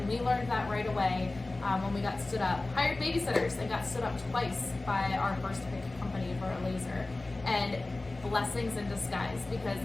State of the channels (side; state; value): right; quieter; 3.0 dB